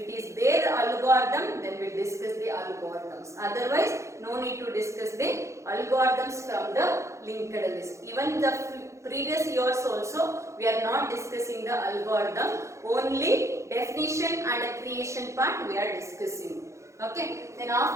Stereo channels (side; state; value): left; late; 0.14 ms